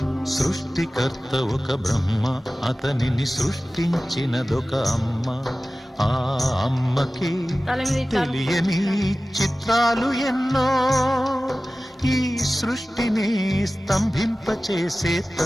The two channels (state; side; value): normal; both; correlation 0.96